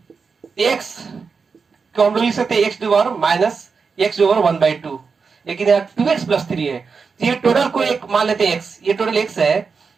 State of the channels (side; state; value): left; quieter; 5.2 dB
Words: x को हम लोग लिख सकते हैं x⁻⁻ माइनस x/1/2, लेकिन यहाँ 2x प्लस 3 है, तो ये टोटल को एक मान लेते हैं x, ये टोटल x है,